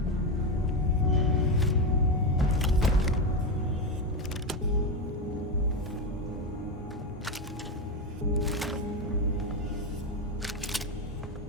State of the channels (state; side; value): normal; both; correlation 0.12